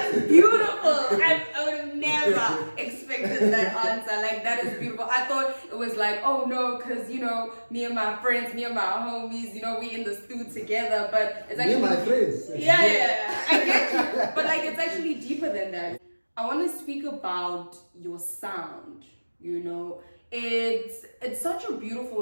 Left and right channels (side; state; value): both; inverted; correlation -1.00